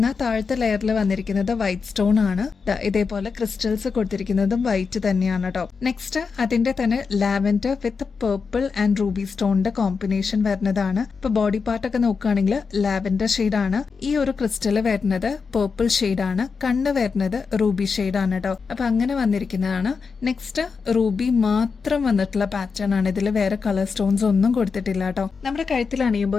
താഴത്തെ ലെയറിൽ വന്നിരിക്കുന്നത് വൈറ്റ് സ്റ്റോൺ ആണ്. ഇതേപോലെ ക്രിസ്റ്റൽസ് കൊടുത്തിരിക്കുന്നത് വൈറ്റ് തന്നെയാണ് കേട്ടോ. നെക്സ്റ്റ് അതിന്റെ തന്നെ lavender with purple and ruby സ്റ്റോണിന്റെ കോമ്പിനേഷൻ വരുന്നതാണ്. ഇപ്പൊ ബോഡി പാർട്ട് ഒക്കെ നോക്കുകയാണെങ്കിൽ ലാവൻഡർ ഷെയ്ഡ് ആണ്, ഈ ഒരു ക്രിസ്റ്റല് വരുന്നത് പേർപ്പിൾ ഷെയ്ഡ് ആണ്, കണ്ണ് വരുന്നത് റൂബി ഷെയ്ഡ് ആണ് കേട്ടോ. അപ്പൊ അങ്ങനെ വന്നിരിക്കുന്നതാണ്. നെക്സ്റ്റ് റൂബി മാത്രം വന്നിട്ടുള്ള പാറ്റേൺ ആണ്. ഇതിൽ വേറെ കളർ സ്റ്റോൺസ് ഒന്നും കൊടുത്തിട്ടില്ല കേട്ടോ. നമ്മുടെ കഴുത്തിൽ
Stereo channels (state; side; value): quieter; right; 5.2 dB